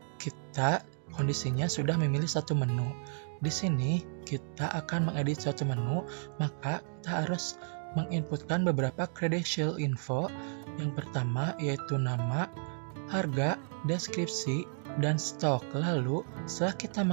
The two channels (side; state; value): left; silent; digital silence